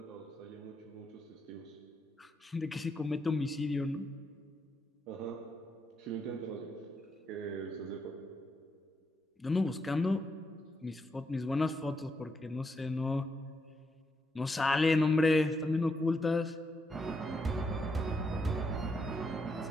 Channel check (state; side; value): normal; both; correlation 0.81